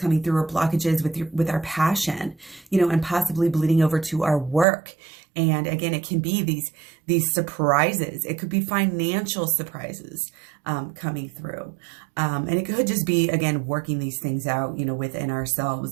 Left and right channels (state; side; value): drops out; left; at 4.7 s